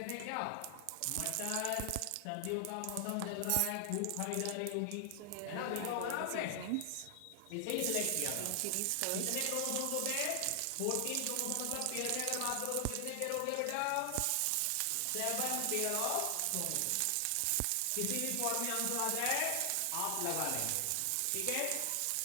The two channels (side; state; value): both; different; correlation 0.00